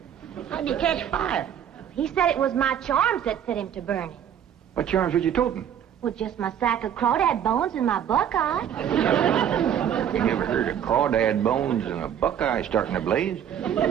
How'd you catch fire? He said it was my charms that set him to burning. What charms was you toting? Well, just my sack of crawdad bones and my buckeye. You never heard of crawdad bones and a buckeye starting a blaze?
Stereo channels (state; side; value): quieter; left; 9.4 dB